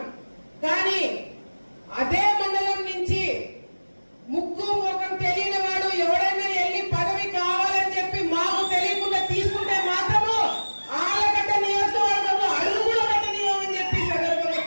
కానీ అదే మండలం నుంచి ముక్కు ముఖం తెలియని వాడు ఎవరైనా వెళ్ళి పదవి కావాలని చెప్పి మాకు తెలియకుండా తీసుకుంటే మాత్రము ఆలగడ్డ నియోజకవర్గంలో అడుగు కూడా పెట్టనివ్వమని చెప్పి సందర్భంగా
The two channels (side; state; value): both; inverted; correlation -1.00